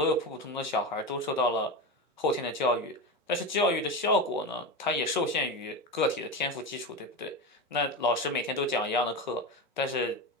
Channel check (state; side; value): normal; both; correlation 0.20